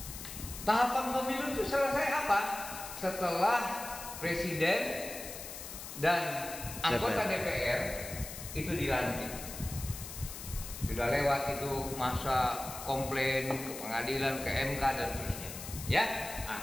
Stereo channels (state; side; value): noise; left; hiss, 10 dB below the sound